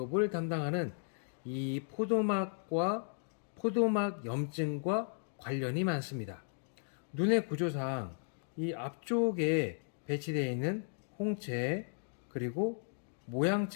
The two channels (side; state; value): right; silent; digital silence